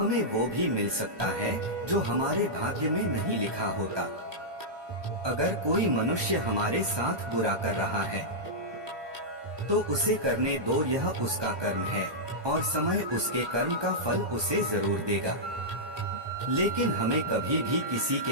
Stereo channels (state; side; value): late; left; 1.2 ms